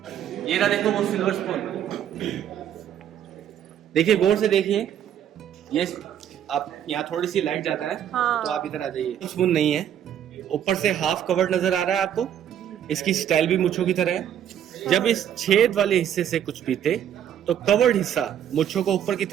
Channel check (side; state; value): left; quieter; 9.9 dB